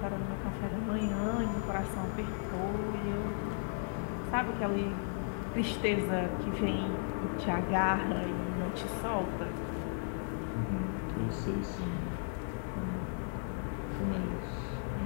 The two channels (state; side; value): silent; right; 54 dB below the other